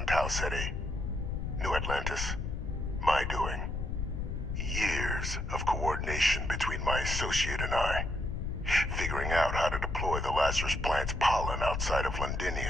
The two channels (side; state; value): left; noise; rumble, 2 dB below the sound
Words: Tau Ceti, New Atlantis, my doing. Years of coordination between my associate and I, figuring out how to deploy the Lazarus plant's pollen outside of